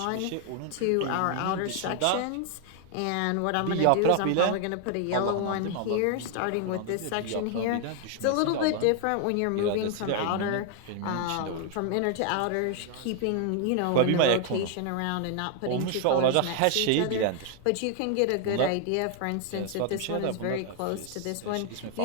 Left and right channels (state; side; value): different; both; correlation 0.00